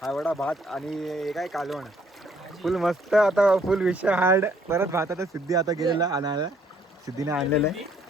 हा एवढा भात आणि हे काय कालवण. फुल मस्त. आता फुल विषय हार्ड. परत भात आता सिद्धी आता गेलेला आणायला. सिद्धीने आणलेलं आहे.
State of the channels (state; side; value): normal; both; correlation 0.65